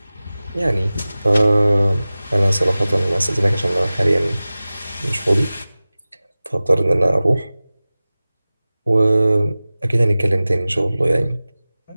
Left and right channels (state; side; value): inverted; both; correlation -0.97